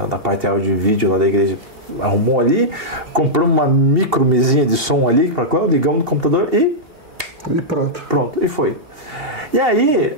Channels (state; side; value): late; left; 2.7 ms